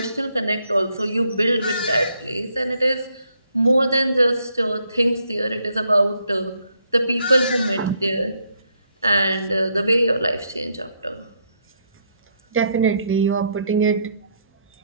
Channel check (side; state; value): both; inverted; correlation -0.73